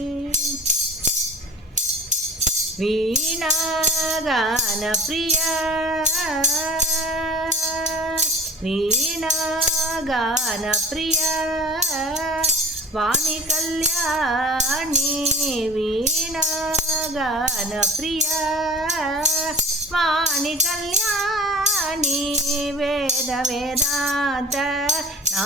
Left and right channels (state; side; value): normal; both; correlation 0.41